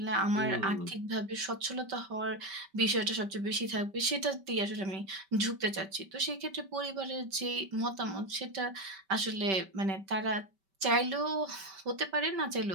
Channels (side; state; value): left; late; 5.2 ms